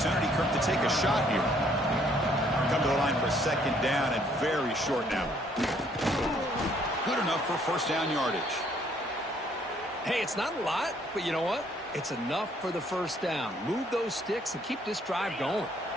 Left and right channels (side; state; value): both; normal; correlation 0.65